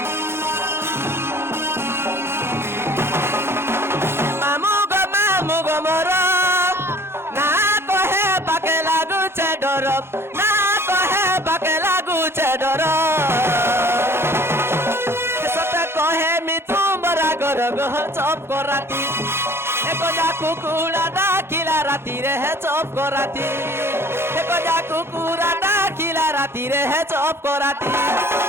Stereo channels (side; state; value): left; late; 0.12 ms